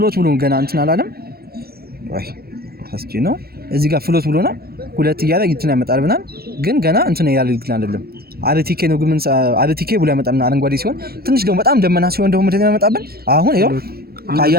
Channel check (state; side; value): late; left; 0.44 ms